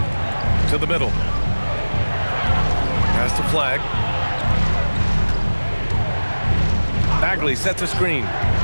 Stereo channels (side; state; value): both; inverted; correlation -1.00